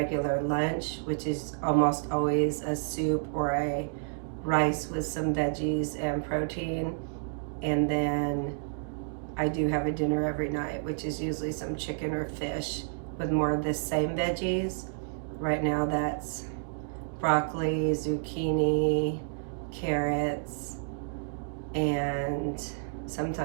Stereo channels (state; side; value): silent; left; digital silence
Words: lunch, which is almost always a soup or a rice with some veggies and protein. And then I do have a dinner every night, which is usually some chicken or fish with more of the same veggies. Right now that's broccoli, zucchini, carrots, and